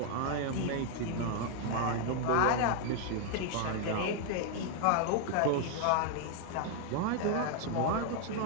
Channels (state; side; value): different; both; correlation 0.00